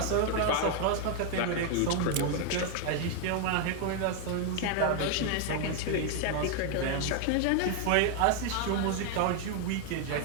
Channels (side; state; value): both; different; correlation 0.00